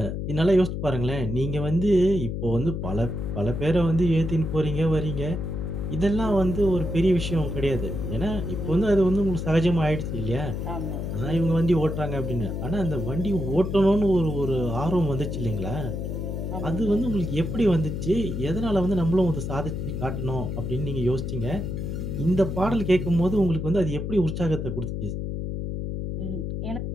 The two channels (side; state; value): left; noise; hum, 4 dB below the sound